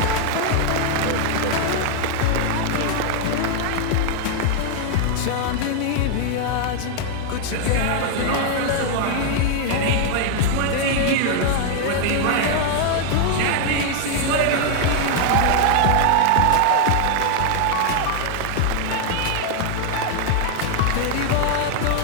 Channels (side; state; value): both; different; correlation 0.00